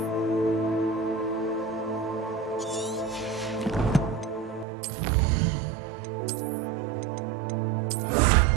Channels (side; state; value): left; drops out; at 4.7 s